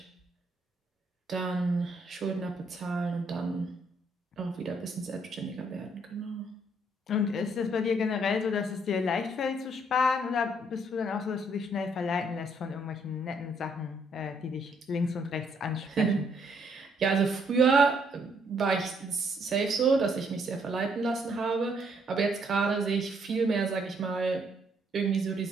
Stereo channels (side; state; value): both; normal; correlation 0.69